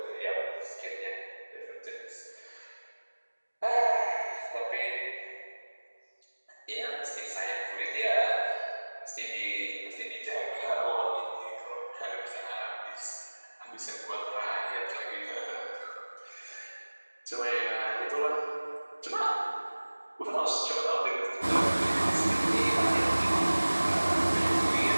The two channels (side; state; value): both; inverted; correlation -1.00